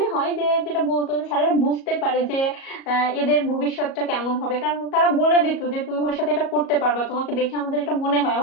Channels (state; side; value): late; right; 37 ms